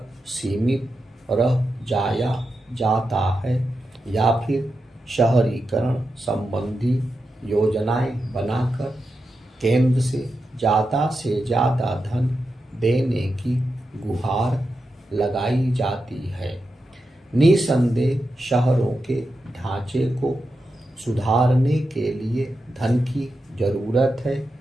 सीमित रह जाया जाता है या फिर शहरीकरण संबंधी योजनाएं बनाकर केंद्र से ज़्यादा धन देने की गुहार लगाई जाती है। निसंदेह शहरों के ढांचे को सुधारने के लिए धन की जरूरत है,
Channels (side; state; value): both; normal; correlation 0.88